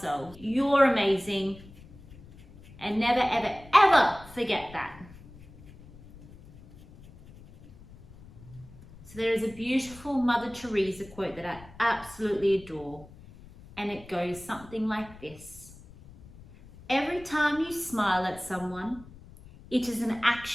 You're amazing. And never, ever forget that. So there is a beautiful Mother Teresa quote that I absolutely adore. And it goes something like this. Every time you smile at someone, it is an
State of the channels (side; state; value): left; noise; rumble, 20 dB below the sound